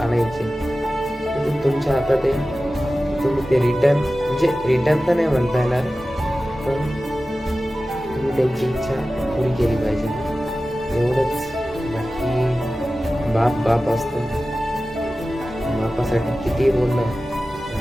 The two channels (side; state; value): both; normal; correlation 0.95